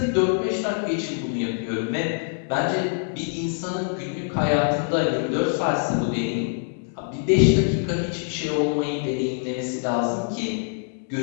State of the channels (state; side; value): silent; right; digital silence